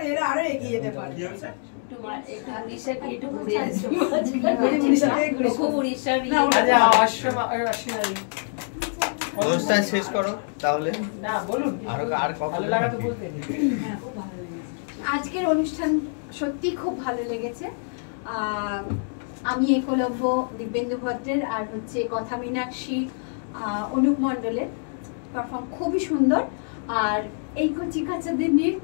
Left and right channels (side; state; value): right; silent; digital silence